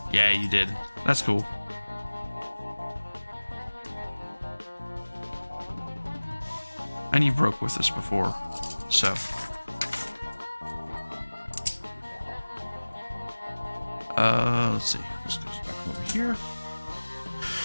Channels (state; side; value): inverted; both; correlation -1.00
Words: Yeah, you did. That's cool. And you broke with us before, so. Let's see. This goes back over here.